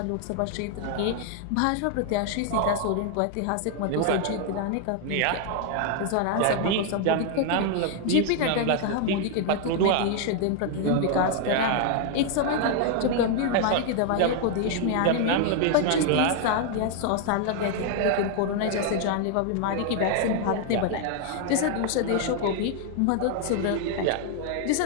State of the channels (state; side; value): different; both; correlation 0.00